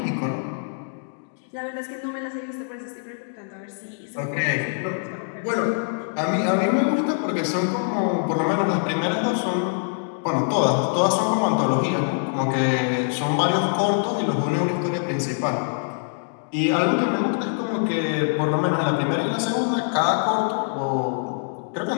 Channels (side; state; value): right; silent; digital silence